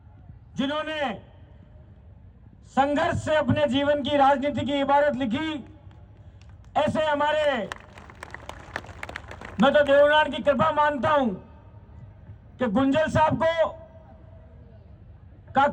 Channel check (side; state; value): both; identical; correlation 1.00